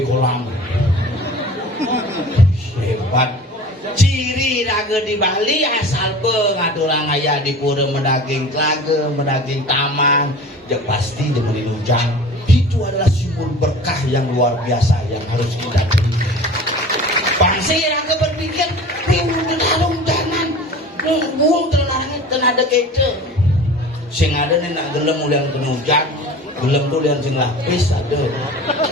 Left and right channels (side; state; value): both; normal; correlation 0.40